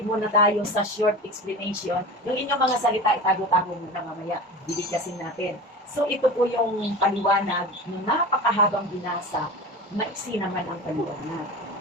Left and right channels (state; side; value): normal; both; correlation 0.31